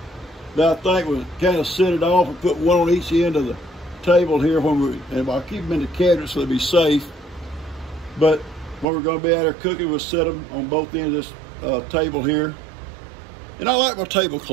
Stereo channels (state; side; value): drops out; left; at 8.8 s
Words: that I think will kind of set it off and put one on each end of the table here and I'll keep them in the cabinet so they'll be safe. But when we're going to be out there cooking, we'll set them on both ends of this table here. And I like my